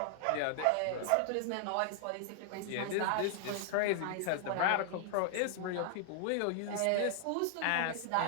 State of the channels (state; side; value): different; both; correlation 0.00